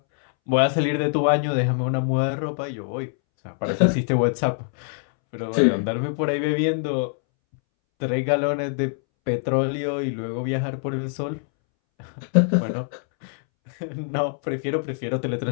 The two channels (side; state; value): right; silent; 63 dB below the other